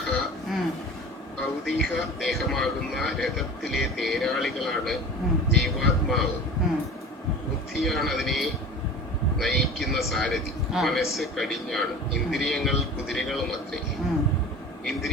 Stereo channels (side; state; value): both; normal; correlation 0.37